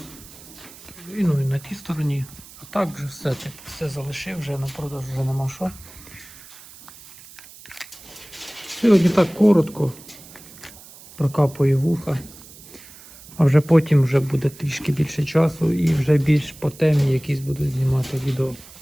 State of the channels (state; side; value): noise; right; hiss, 20 dB below the sound